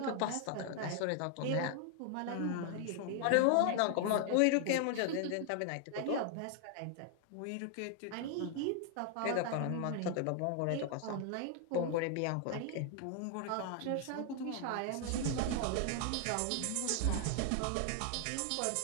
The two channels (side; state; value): both; different; correlation 0.00